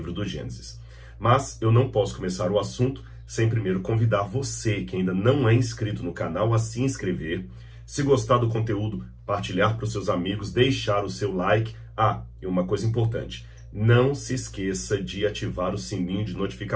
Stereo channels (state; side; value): identical; both; correlation 1.00